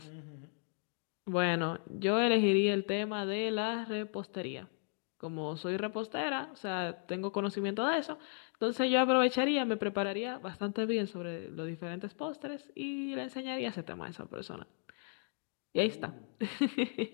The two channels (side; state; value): right; silent; 54 dB below the other